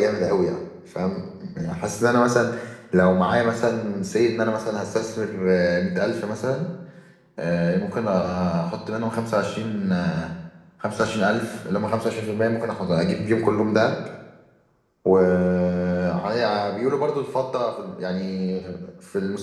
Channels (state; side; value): identical; both; correlation 1.00